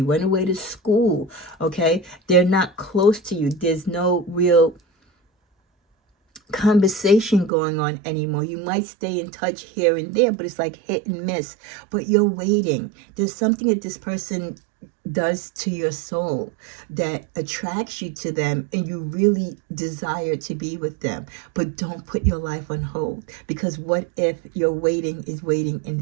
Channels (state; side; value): drops out; left; at 7.5 s